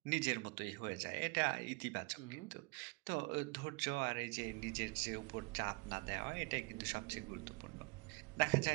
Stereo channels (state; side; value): quieter; left; 28.2 dB